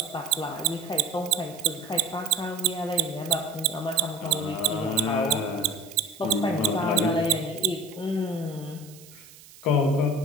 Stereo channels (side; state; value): right; noise; hiss, 21 dB below the sound